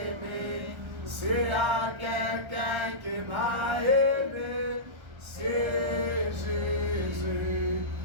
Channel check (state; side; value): late; left; 1.3 ms